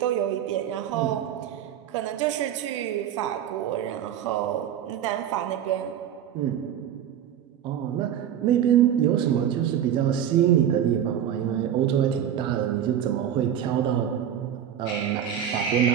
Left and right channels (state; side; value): quieter; left; 9.8 dB